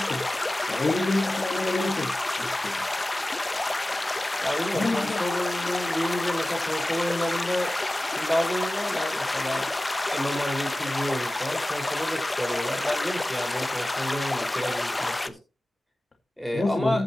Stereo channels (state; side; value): normal; both; correlation 0.97